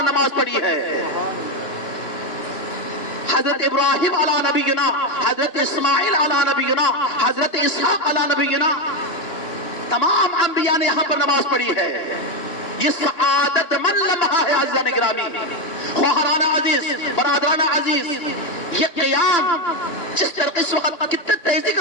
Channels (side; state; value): right; late; 2.9 ms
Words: نماز پڑھی ہے. حضرت ابراہیم علی نبینا، حضرت اسماعیل علی نبینا، حضرت اسحاق علی نبینا، تمام انبیاء نے یہاں پر نماز پڑھی ہے. یہ سعادت من لمحہ ہے عزیزان گرامی، خواہران عزیز، برادران عزیز. یہ قیام جس طرح اس وقت کتنے تیزی کے